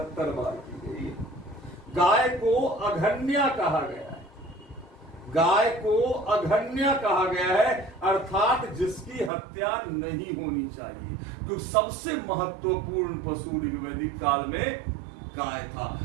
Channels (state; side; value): drops out; left; at 9.3 s